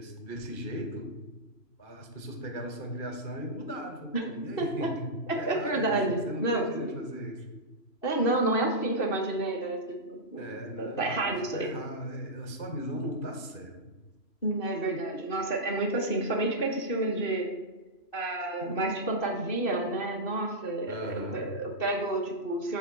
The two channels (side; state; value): right; late; 3.0 ms